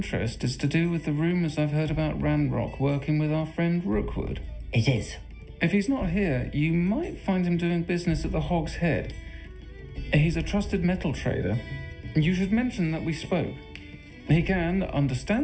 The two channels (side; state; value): both; identical; correlation 1.00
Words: is to do with the rumours I've heard about Ranrock working with our friend Rookwood. It is. If he's not here, you might find him doing business at the Hog's Head. He's a trusted metal trader. You should mention that we spoke. He can,